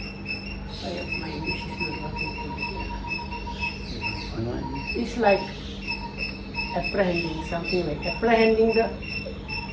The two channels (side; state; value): both; identical; correlation 1.00